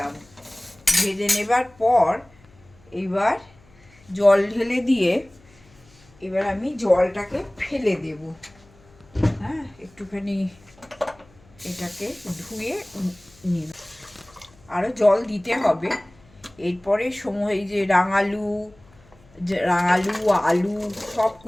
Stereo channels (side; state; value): left; noise; hum, 28 dB below the sound